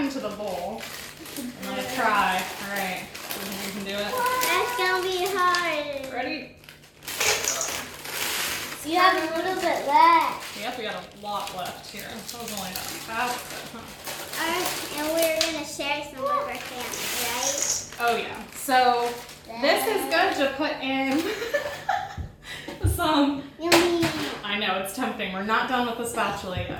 the bowl. I'm gonna try. All right, you can do it. That's gonna be hard. Ready? You have a little bit left. Yep, we got a lot left here. That was only about half of it, huh? And we're gonna share some with our family, right? Oh yeah. So this is good to put in some. Yummy. I know, it's tempting. We're not done with the spatula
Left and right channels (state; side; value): identical; both; correlation 1.00